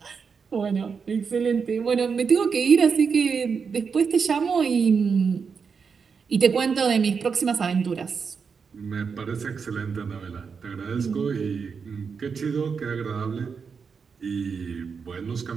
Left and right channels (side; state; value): left; quieter; 5.8 dB